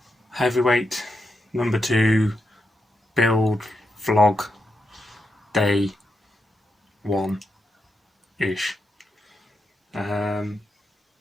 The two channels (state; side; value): normal; both; correlation 0.84